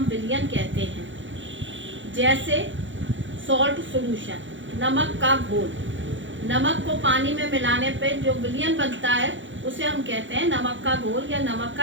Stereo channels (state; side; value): late; left; 0.55 ms